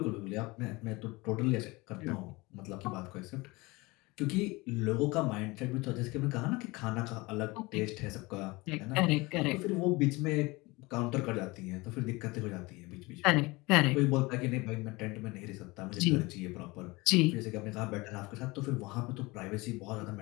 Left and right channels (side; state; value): right; quieter; 23.3 dB